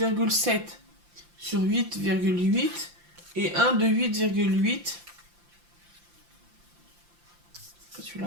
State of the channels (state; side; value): late; left; 5.8 ms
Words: sur 8,8 et un de 8,8. C'est